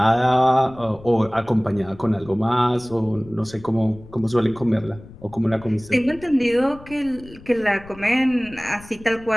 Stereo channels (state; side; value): noise; left; rumble, 20 dB below the sound